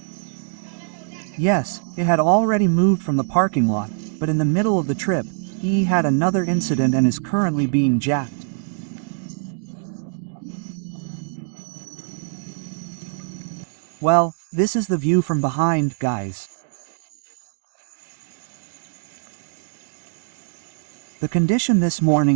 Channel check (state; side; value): silent; left; digital silence